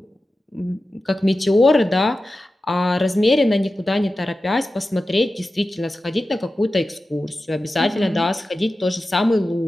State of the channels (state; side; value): normal; both; correlation 0.94